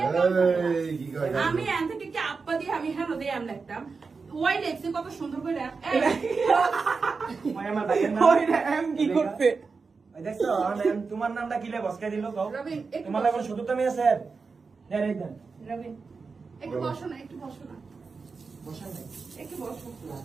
আমি এন থেকে কি আপা দিয়ে আমি হেন দিয়ে এম লিখতাম ওই লেখছে কত সুন্দর করে। ভাই আমার ভাইয়ের নাম ওই এম কি করতে? ভাই দেখছো তোমার নামটা কি লে বসকে দিল কও? রবিন একটু তোমার লাগে শুধু তুমি আছে। দেন এই দেন রবিন একটু বসো না, একটু বসো না, বসান নাই একটু বসো।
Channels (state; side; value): quieter; left; 4.7 dB